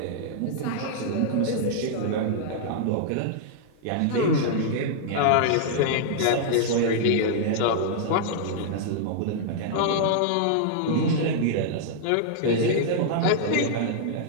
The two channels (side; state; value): both; different; correlation -0.01